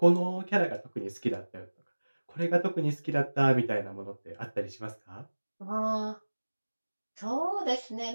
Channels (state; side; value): inverted; both; correlation -1.00